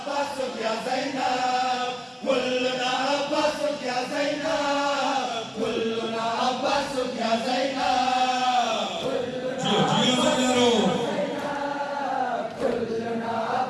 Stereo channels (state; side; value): identical; both; correlation 1.00